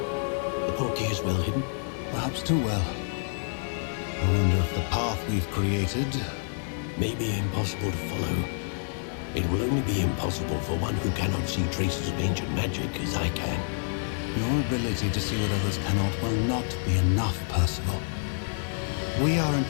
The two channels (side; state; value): right; silent; digital silence